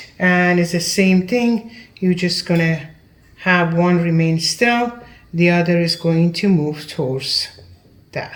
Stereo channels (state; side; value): identical; both; correlation 1.00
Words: and it's the same thing. You're just gonna have one remain still, the other is going to move towards